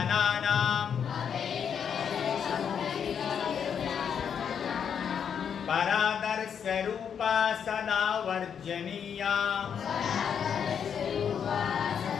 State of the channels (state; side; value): quieter; right; 7.7 dB